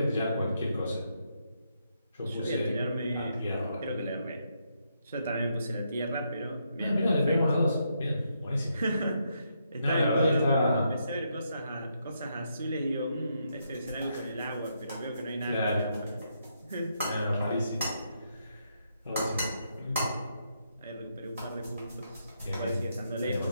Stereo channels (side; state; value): both; inverted; correlation -0.79